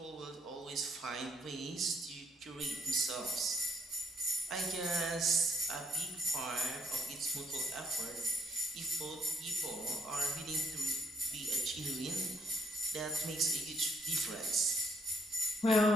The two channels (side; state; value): both; normal; correlation 0.66